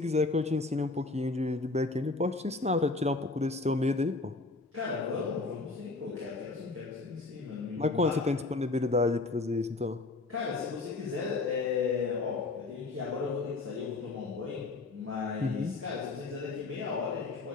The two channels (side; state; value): right; quieter; 3.5 dB